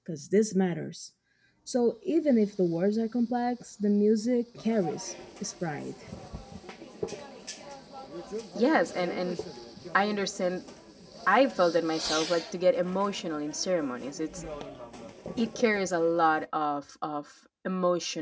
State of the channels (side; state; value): both; identical; correlation 1.00